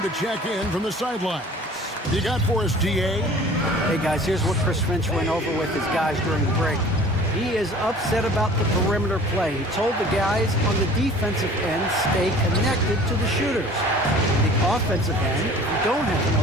to check in from the sidelines. You got for us, DA? Hey, guys, here's what Chris Finch went over with his guys during the break. He is upset about the perimeter play. He told the guys on the defensive end, stay connected to the shooters. On the offensive end, if you don't have an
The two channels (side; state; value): both; normal; correlation 0.47